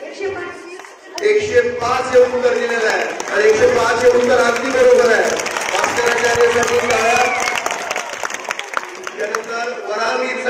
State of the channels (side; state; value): both; identical; correlation 1.00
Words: 105 हे उत्तर दिलेलं आहे आणि 105 हे उत्तर अगदी बरोबर आहे. भास्कराचार्यसाठी त्यानंतर